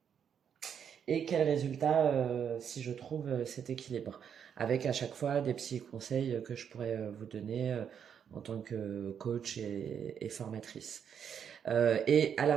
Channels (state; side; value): quieter; left; 8.0 dB